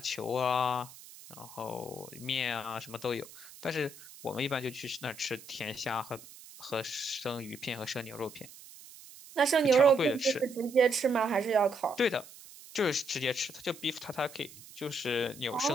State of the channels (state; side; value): noise; right; hiss, 18 dB below the sound